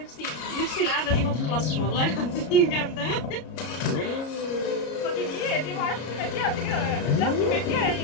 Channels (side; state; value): right; late; 33 ms